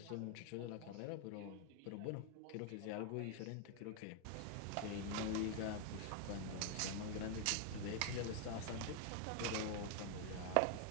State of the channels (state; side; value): different; both; correlation 0.00